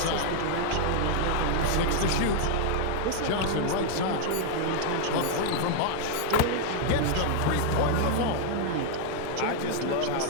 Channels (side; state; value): both; different; correlation 0.00